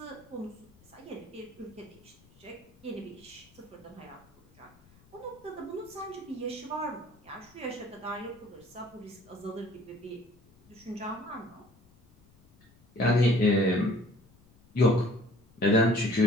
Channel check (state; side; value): noise; left; rumble, 28 dB below the sound